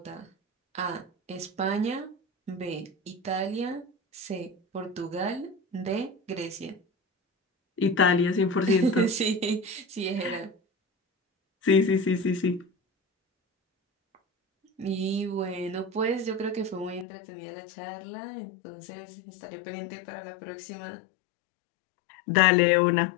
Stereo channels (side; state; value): right; drops out; at 17.1 s